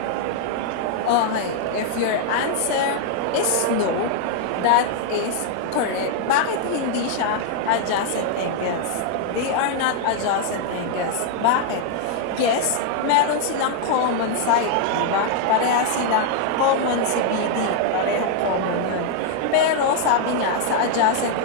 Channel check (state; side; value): different; both; correlation 0.00